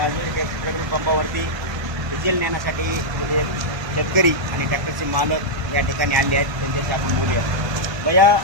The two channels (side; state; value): left; late; 1.3 ms